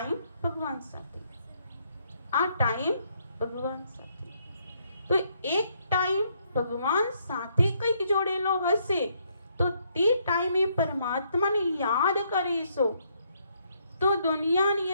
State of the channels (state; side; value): inverted; both; correlation -0.72